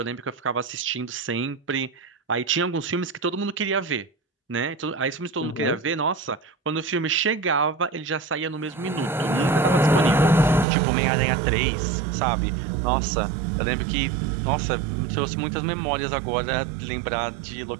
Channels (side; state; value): left; drops out; at 10.7 s